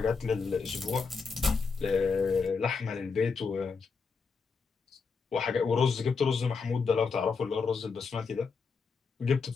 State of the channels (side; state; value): right; quieter; 5.0 dB